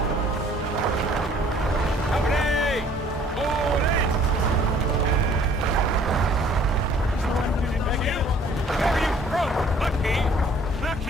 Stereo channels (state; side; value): normal; both; correlation 0.56